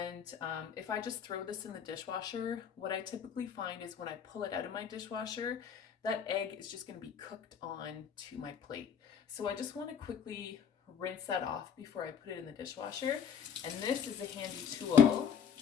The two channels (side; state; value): right; quieter; 7.6 dB